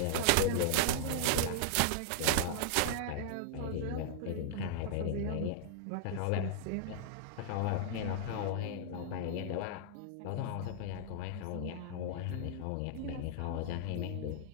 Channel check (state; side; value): different; both; correlation -0.01